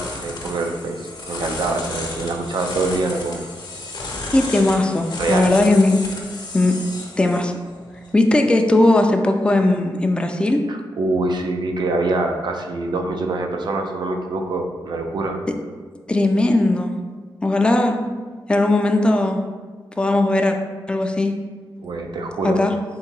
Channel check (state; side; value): normal; both; correlation 0.85